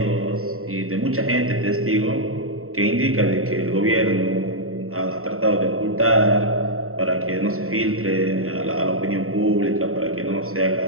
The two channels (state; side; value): late; left; 0.63 ms